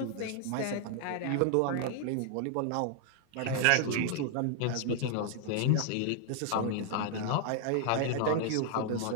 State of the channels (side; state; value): both; different; correlation 0.00